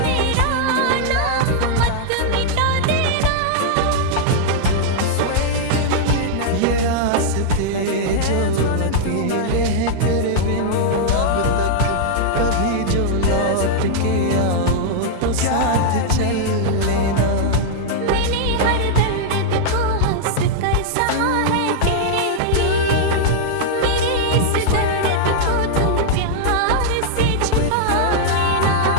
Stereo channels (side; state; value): both; different; correlation -0.01